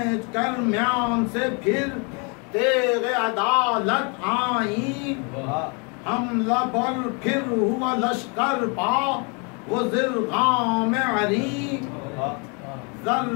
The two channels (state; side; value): quieter; right; 33.9 dB